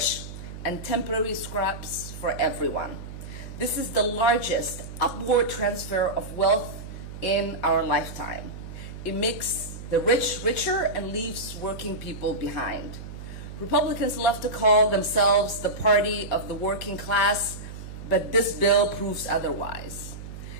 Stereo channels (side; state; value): right; noise; hum, 11 dB below the sound